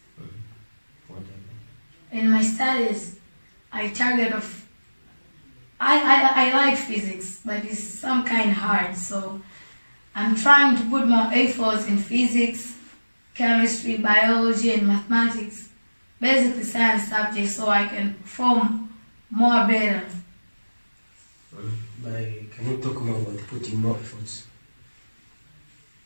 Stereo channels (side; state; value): both; inverted; correlation -1.00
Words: Whatever. In my studies, I like physics, but it's some kind hard, so I'm trying to put more efforts in physics, chemistry, biology, and mathematics, basically science subjects, so I can perform more better. Can you talk more about putting more efforts?